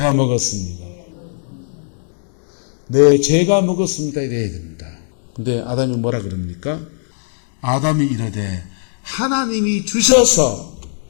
먹었습니다. 네, 제가 먹었습니다. 이래야 됩니다. 근데 아담이 뭐라 그럽니까? 아담이 이르되 하나님이 주셔서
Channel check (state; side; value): silent; right; digital silence